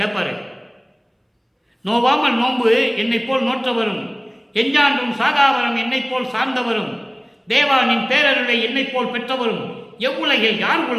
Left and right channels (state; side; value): identical; both; correlation 1.00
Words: நோவாமல் நோன்பு என்னை போல் நோற்றவரும், எஞ்சான்றும் சாகாவரம் என்னை போல் சார்ந்தவரும், தேவா நின் பேரருளை என்னை போல் பெற்றவரும் எவ்வுலகில் யார்